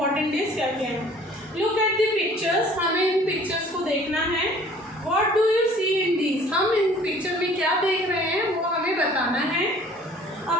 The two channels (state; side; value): normal; both; correlation 0.52